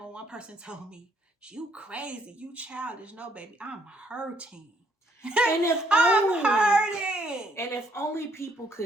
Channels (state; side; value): normal; both; correlation 0.68